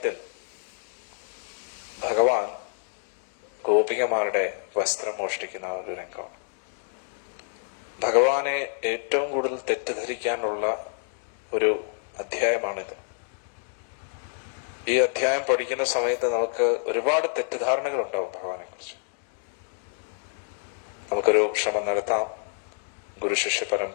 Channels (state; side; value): silent; right; digital silence